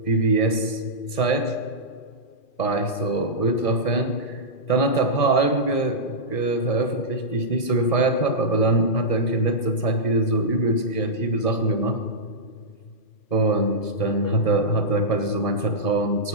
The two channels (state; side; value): late; right; 1.7 ms